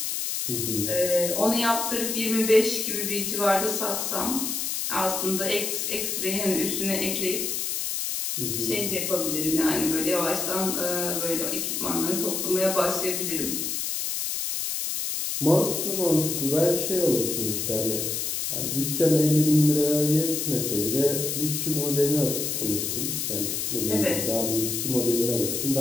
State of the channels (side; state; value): left; noise; hiss, 2 dB below the sound